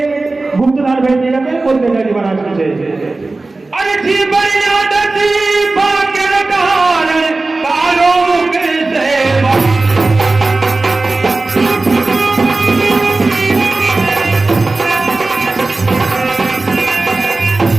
गुप्तदान भेंट किए जाते हैं। बोल तेजा दीवाना की जय। अरे जी बनिया दसी भाग्य कारण कालो मुख सेवा।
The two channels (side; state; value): left; quieter; 3.3 dB